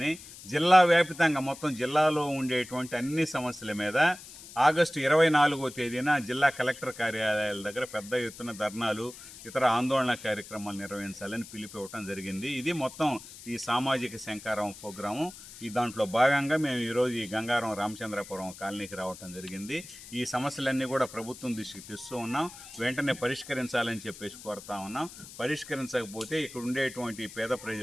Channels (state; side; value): noise; left; hiss, 16 dB below the sound